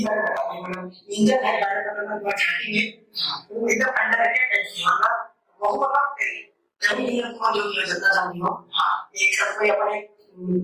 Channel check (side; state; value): both; identical; correlation 1.00